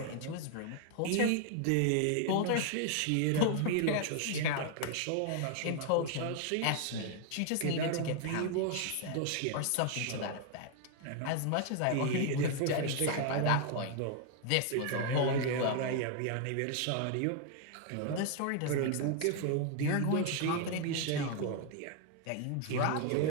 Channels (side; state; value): both; different; correlation 0.00